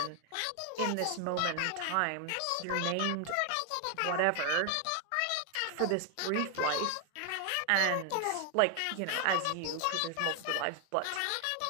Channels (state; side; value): different; both; correlation 0.00